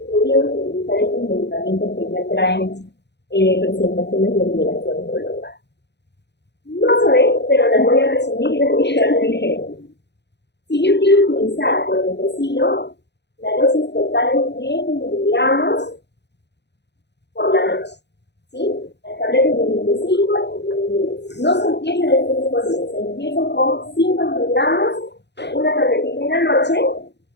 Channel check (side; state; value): right; late; 0.50 ms